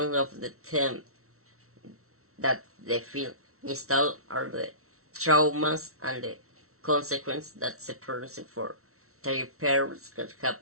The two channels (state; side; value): late; left; 0.63 ms